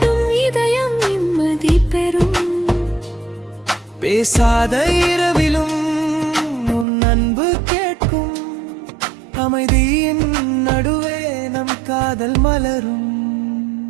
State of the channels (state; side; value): drops out; left; at 6.9 s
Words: இதயம் நிம்மதி பெறும். பேசாத இரவிலும் உன் அன்பு கேட்கும். அமைதியின் நடுவே நம் காதல் மலரும்.